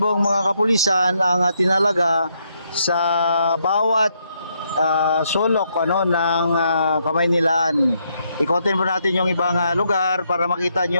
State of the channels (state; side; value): inverted; both; correlation -0.76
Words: mga kapulisan ang tinalaga sa bawat sulok ng Kamaynilaan. Ikotin po natin yung ibang lugar para makita